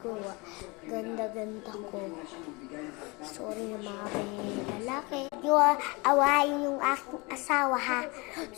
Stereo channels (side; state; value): right; quieter; 26.8 dB